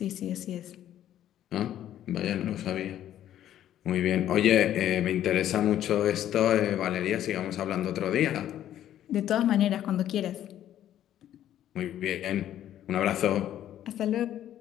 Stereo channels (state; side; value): quieter; right; 11.6 dB